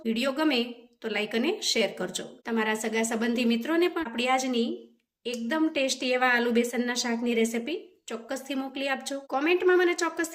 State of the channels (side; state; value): both; identical; correlation 1.00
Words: વિડીયો ગમે તો લાઈક અને શેર કરજો. તમારા સગા સંબંધી મિત્રોને પણ આપણી આજની એકદમ ટેસ્ટી એવા આલુ બેસનના શાકની રેસિપી ચોક્કસથી મોકલી આપજો. કોમેન્ટમાં મને